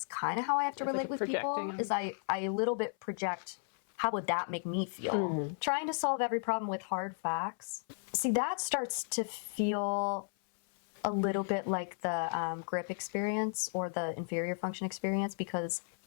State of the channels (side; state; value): right; silent; 55 dB below the other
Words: kind of how I have to It's like relate a with people. projecting. Is I a little bit project how would that make me feel? Trying to solve every problem with hard facts. See, that starts to feel a little bit like the grip experience or the inferior function experience, because